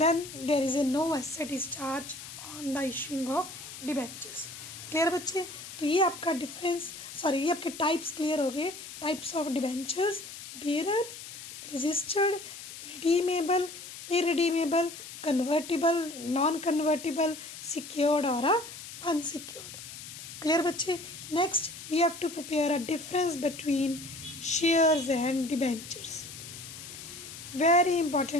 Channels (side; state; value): left; noise; hiss, 12 dB below the sound